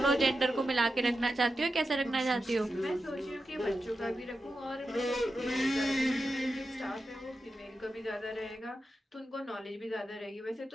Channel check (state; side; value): normal; both; correlation 0.90